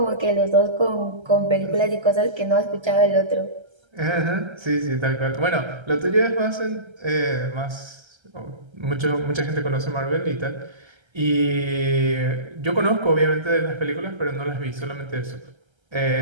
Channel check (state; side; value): late; left; 1.3 ms